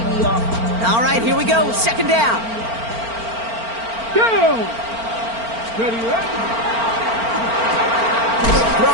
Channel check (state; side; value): late; left; 4.4 ms